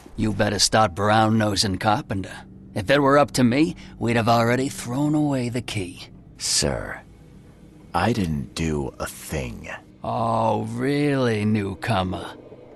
You better start brown-nosing Carpenter. If it were up to me, we'd have already thrown away the key. Sir, I didn't do a thing. Oh, really, newcomer?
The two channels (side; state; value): both; identical; correlation 1.00